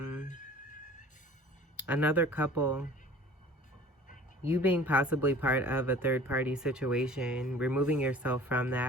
another couple, you being possibly part of a third-party situation, removing yourself from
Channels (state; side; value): normal; both; correlation 0.46